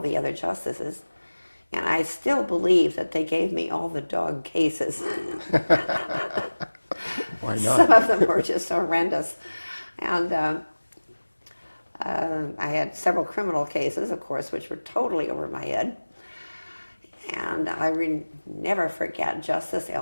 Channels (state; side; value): inverted; both; correlation -1.00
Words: other justices, and I still believe that they gave me all the dog cases. Why not? Some of them were just horrendous. And I had several criminal cases, of course, which were totally over my head. And I never forget Justice